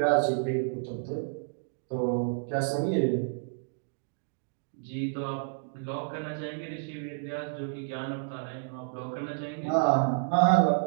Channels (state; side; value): silent; left; digital silence